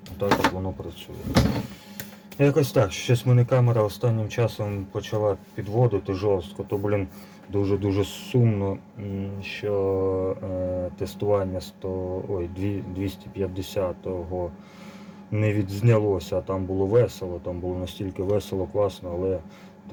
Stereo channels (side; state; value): both; identical; correlation 1.00